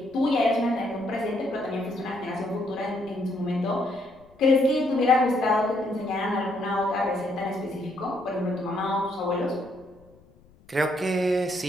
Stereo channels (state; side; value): noise; left; rumble, 28 dB below the sound